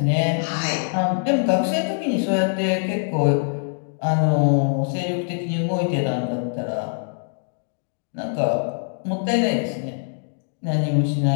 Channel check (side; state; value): right; silent; digital silence